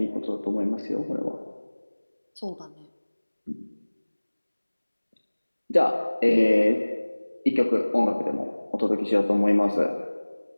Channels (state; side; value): inverted; both; correlation -1.00